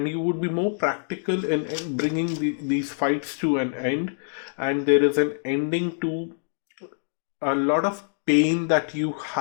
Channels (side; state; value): right; silent; digital silence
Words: you would be more practical in bringing these fights to an end, and there is an ending to a lot of pain that you